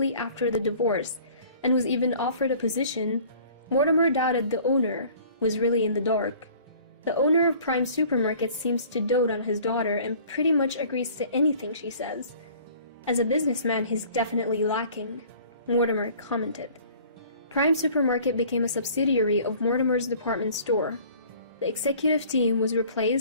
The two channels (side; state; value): both; inverted; correlation -0.50